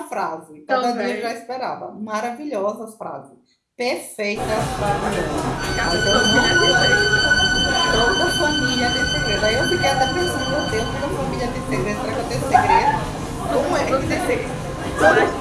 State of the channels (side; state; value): both; identical; correlation 1.00